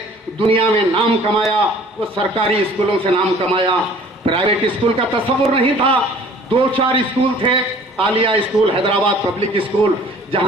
दुनिया में नाम कमाया, वो सरकारी स्कूलों से नाम कमाया। प्राइवेट स्कूल का तस्वुर नहीं था। 2-4 स्कूल थे, Alia school, Hyderabad public school,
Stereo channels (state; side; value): normal; both; correlation 0.51